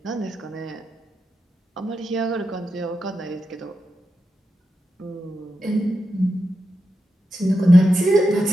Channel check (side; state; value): both; normal; correlation 0.88